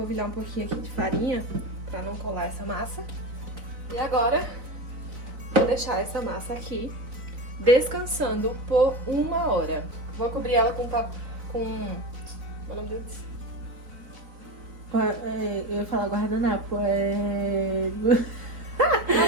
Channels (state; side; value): late; left; 3.9 ms